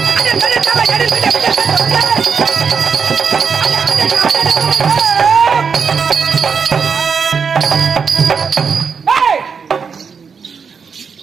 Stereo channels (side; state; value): left; quieter; 6.0 dB